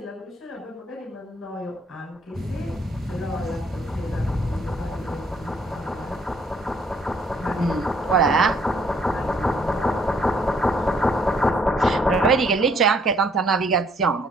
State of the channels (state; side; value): normal; both; correlation 0.66